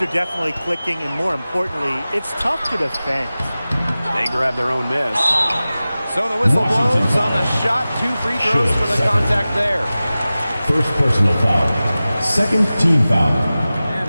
are definitely clicking, and more importantly, it's tough to defend. They grab their own miss. So the whistle blows on the shot. 2 free throws for the contact there. First personal foul. Second team foul.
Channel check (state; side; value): inverted; both; correlation -0.96